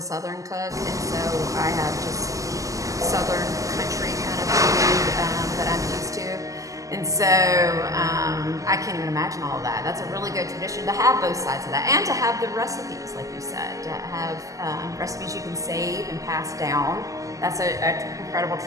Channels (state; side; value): late; left; 0.16 ms